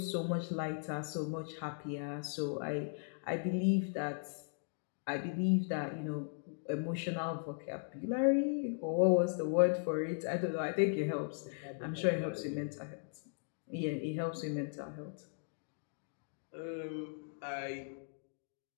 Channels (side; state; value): right; silent; digital silence